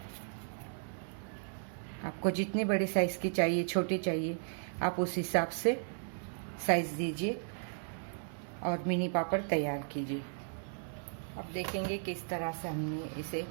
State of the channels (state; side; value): silent; left; digital silence